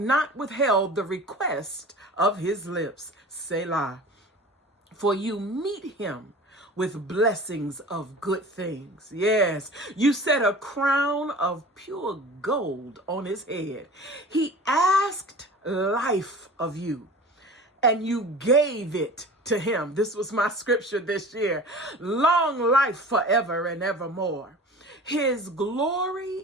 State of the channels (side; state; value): both; normal; correlation 0.39